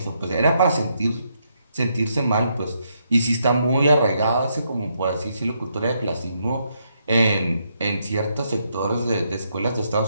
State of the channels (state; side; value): inverted; both; correlation -0.77